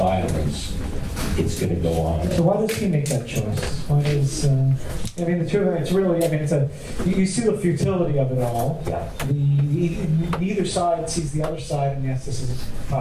it's going to go on. So why does he make that choice? Why does, I mean, the two of them, it's really, I mean, you see the futility of it all. Yeah. Neither side sees the other side, and yes, this is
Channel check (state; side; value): identical; both; correlation 1.00